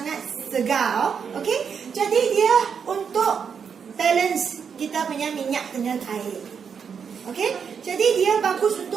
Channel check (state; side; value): quieter; left; 6.7 dB